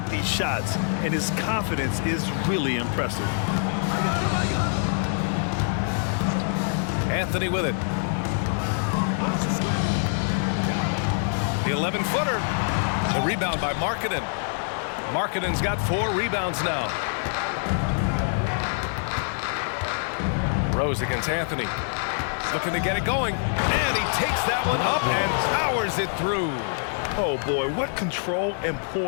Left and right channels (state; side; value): silent; right; digital silence